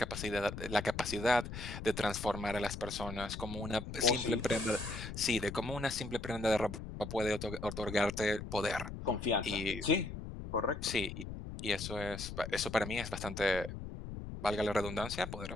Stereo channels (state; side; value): noise; left; rumble, 8 dB below the sound